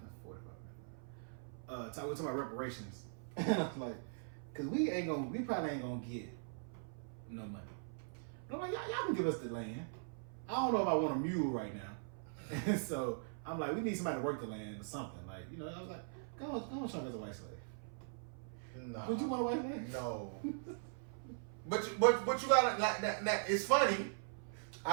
45 minutes. We're talking about reparations. And I was like, cause we probably ain't gonna get no money. But I'm like, y'all can give us the land. I don't know if I want a mule right now. And so I'm like, we need somebody to work the land or something. Like, I was like, go on, show me as a white slave. No. Would you want a white slave? No. But you gotta now, it's funny.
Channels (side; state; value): left; silent; 51 dB below the other